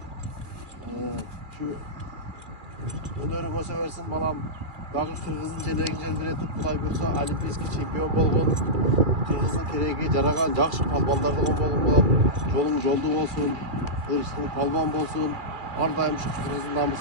şu önörüme seversin balam. Dagı Kırgız'ın jelegin biletip Kuday buyursa olimpiyskiy çempiyon bolgun. Kırgız'ın keregi jaragan jakşı palbanlardan bolgun balam. Jolun joldu bolsun, ırışın palban bolsun. Ardayım şu Kırgız'ın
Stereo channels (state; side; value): late; left; 2.3 ms